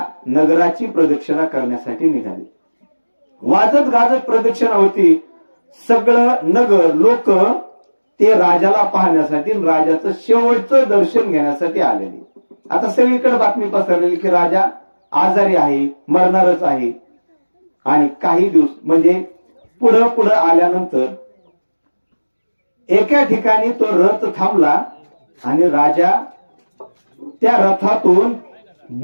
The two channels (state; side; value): inverted; both; correlation -1.00